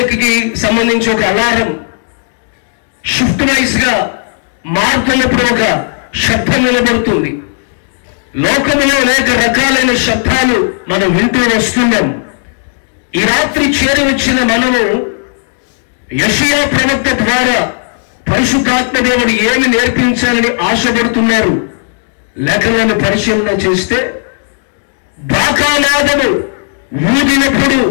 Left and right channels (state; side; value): silent; right; digital silence